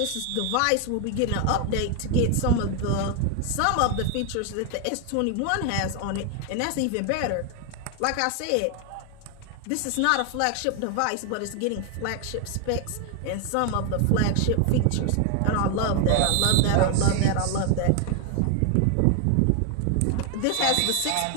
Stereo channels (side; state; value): both; different; correlation 0.01